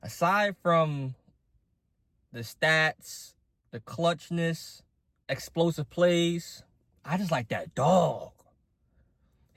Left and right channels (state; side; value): identical; both; correlation 1.00